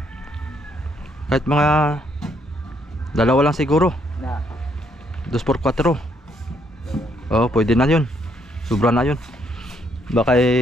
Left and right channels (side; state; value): both; normal; correlation 0.71